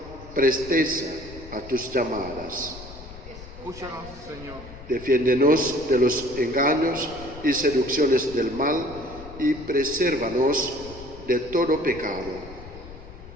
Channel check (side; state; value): left; noise; rumble, 16 dB below the sound